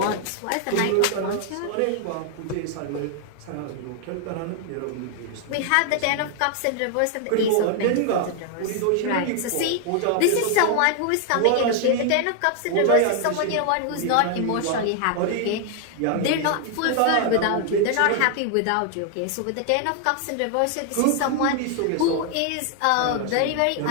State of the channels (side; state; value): both; different; correlation 0.00